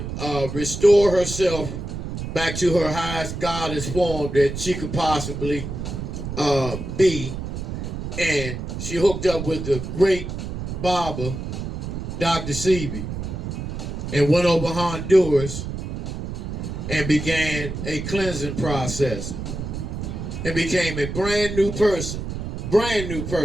restore herself back to her highest goddess form that she could possibly be. And she hooked up with the great barber, Dr. Sebi, and went over Honduras and began a cleansing process and became a brand new person. Brand new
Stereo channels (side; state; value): right; noise; rumble, 6 dB below the sound